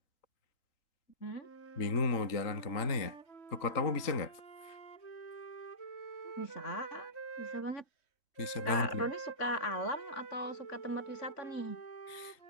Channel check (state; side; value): late; right; 3.8 ms